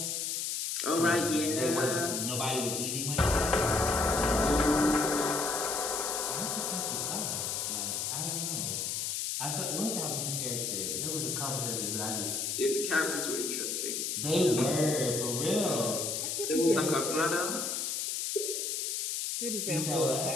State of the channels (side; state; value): left; noise; hiss, 1 dB below the sound